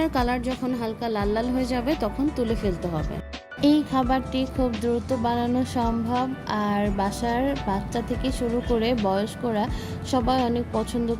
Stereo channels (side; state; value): both; identical; correlation 1.00